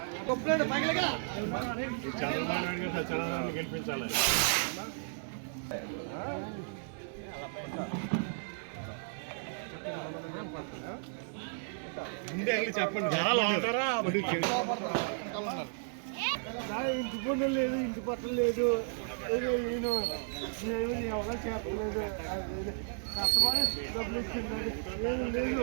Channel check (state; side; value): silent; left; digital silence